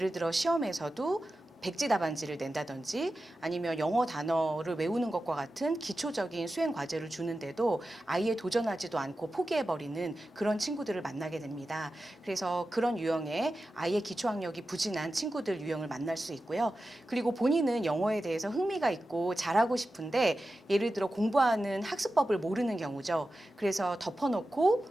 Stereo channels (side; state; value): both; normal; correlation 0.93